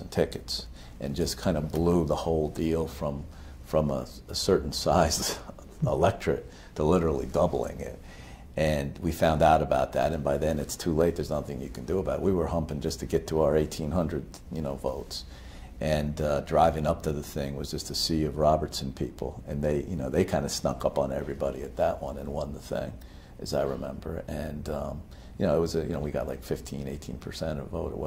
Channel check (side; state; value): both; identical; correlation 1.00